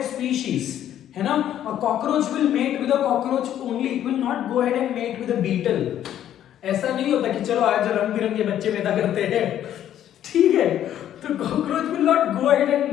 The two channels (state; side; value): quieter; right; 11.1 dB